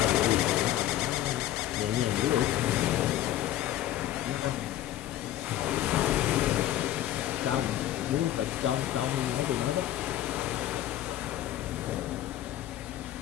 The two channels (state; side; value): quieter; right; 13.2 dB